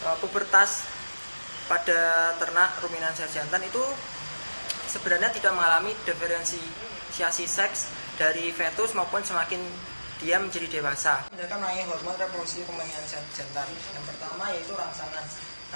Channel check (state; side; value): inverted; both; correlation -1.00